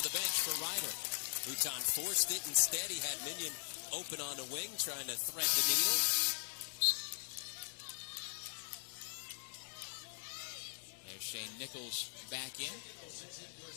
the bench for Ryder. Luton forced it. Instead, he had Minion open on the wing, trying to thread the needle. There's Shane Nichols back in,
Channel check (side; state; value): right; silent; digital silence